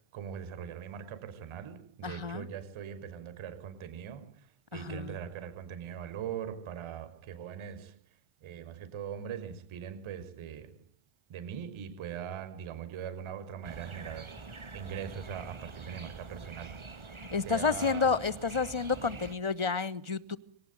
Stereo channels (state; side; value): late; left; 1.4 ms